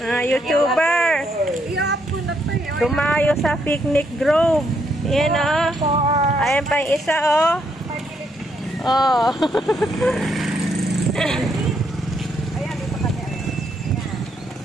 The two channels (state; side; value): normal; both; correlation 0.75